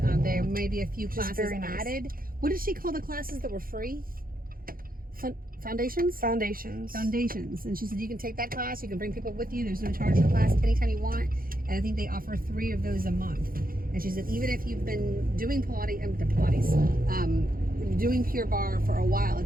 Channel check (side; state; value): left; late; 0.42 ms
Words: may be a few is classes very nice. added. What did she call the classes that were free? Foundations? Foundations. Foundations. And she said you can take that class, you can bring people with you, there's no charge for class anytime you want. And I think they offer 3 of those a month. And she said even if you've been doing doing Pure Barre for a while,